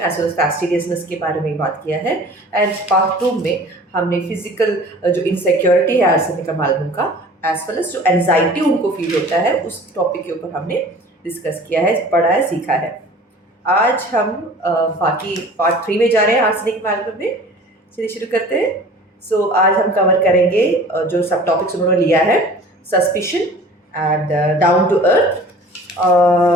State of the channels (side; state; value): both; normal; correlation 0.45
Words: वेल एज फैस्टिडियसनेस के बारे में बात किया है एंड पार्ट 2 में हमने फिजिकल जो इनसिक्योरिटी है आर्सेनिक मालूम का एज वेल एज जो एंजाइटी उनको फील होता है उस टॉपिक के ऊपर हमने डिस्कस किया है, पढ़ा है, सीखा है। आज हम बाकी पार्ट 3 में जा रहे हैं आर्सेनिक मालूम में। चलिए शुरू करते हैं। आज हम कवर करेंगे जो सब टॉपिक्स उन्होंने लिया है, suspicion and down to earth.